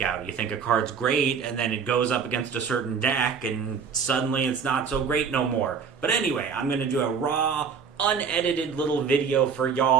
out. You think a card's great, and then it goes up against a certain deck, and suddenly it's not so great no more. But anyway, I'm going to do a raw, unedited little video for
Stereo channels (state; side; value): quieter; left; 6.3 dB